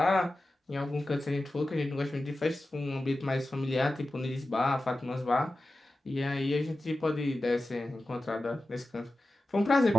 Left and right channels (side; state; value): both; normal; correlation 0.94